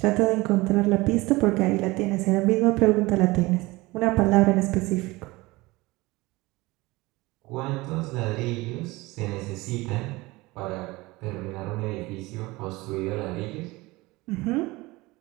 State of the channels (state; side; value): quieter; left; 21.5 dB